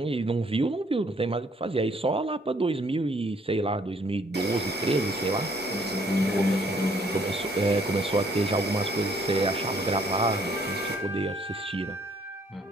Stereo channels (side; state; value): both; normal; correlation 0.64